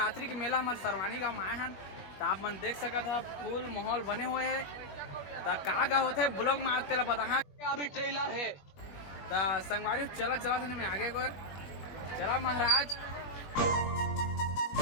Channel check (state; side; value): late; right; 21 ms